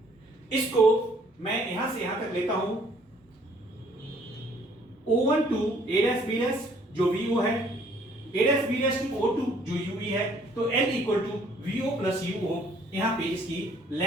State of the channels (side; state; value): both; normal; correlation 0.60